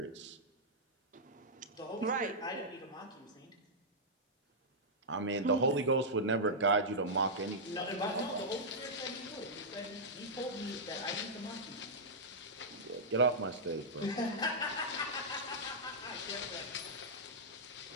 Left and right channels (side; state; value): both; normal; correlation -0.09